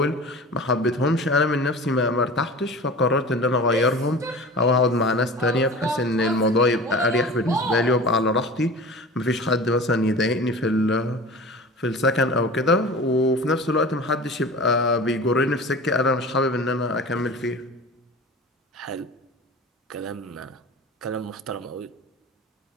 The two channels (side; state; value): both; normal; correlation 0.37